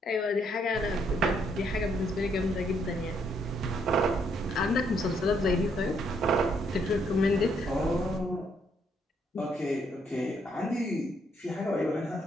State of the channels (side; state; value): both; normal; correlation 0.72